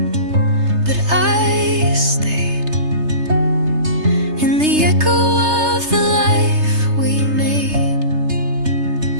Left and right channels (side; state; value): left; late; 3.3 ms